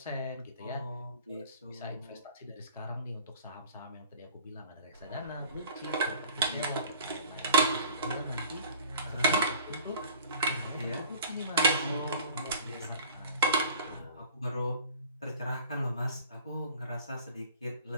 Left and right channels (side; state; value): both; inverted; correlation -0.46